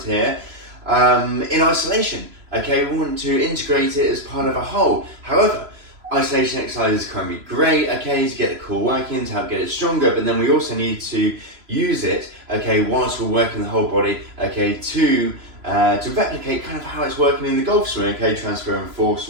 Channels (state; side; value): late; left; 3.0 ms